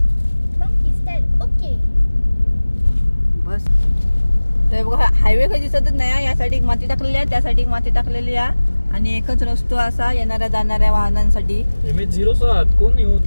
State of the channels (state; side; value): inverted; both; correlation -1.00